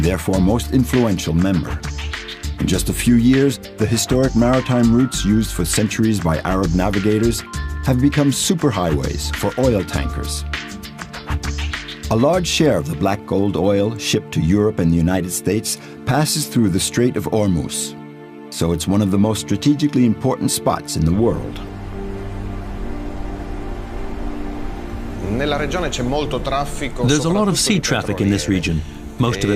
therefore most influential member. In just a few years, the historic maritime routes used for centuries by Arab navigators have become superhighways for oil tankers. A large share of the black gold oil shipped to Europe and the United States passes through the Strait of Hormuz. so it's one of the most strategically important spots in the world. There's a lot of sea traffic in this region, most of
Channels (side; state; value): both; identical; correlation 1.00